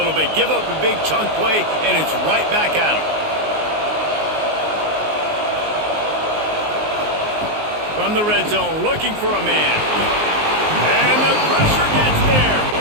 bit. Give up a big chunk play, and it's right back at them. From the red zone, looking for a man. And the pressure gets there.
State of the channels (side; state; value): left; late; 19 ms